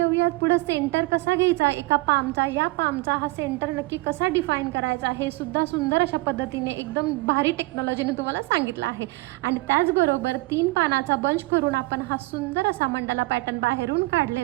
पुढे सेंटर कसा घ्यायचा एका पामचा, या पामचा हा सेंटर नक्की कसा डिफाईन करायचा हे सुद्धा सुंदर अशा पद्धतीने एकदम भारी टेक्नॉलॉजीने तुम्हाला सांगितलं आहे. आणि त्याचबरोबर 3 पानाचा बंच करून आपण हा सुंदर असा मंडाला पॅटर्न बाहेरून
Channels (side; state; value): left; quieter; 21.9 dB